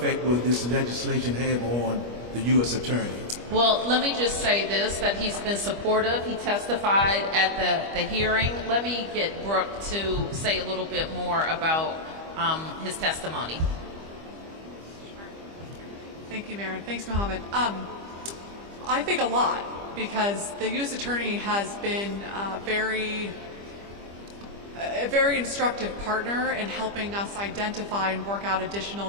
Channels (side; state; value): left; late; 25 ms